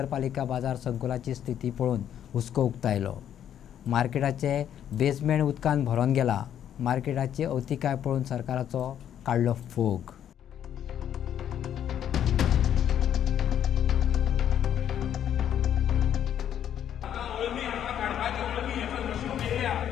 बाजार संकुलाची स्थिती पळोवन हुस्को उक्तायलो। मार्केटाचे बेसमेंट उदकान भरोन गेला। मार्केटाची अवतिकाय पळोवन सरकाराचो काडलो फोग।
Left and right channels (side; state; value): right; quieter; 9.9 dB